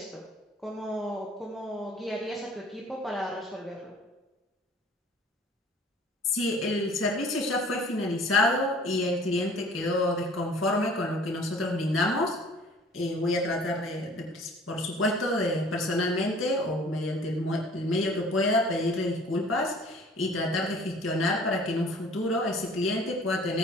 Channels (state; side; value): normal; both; correlation 0.51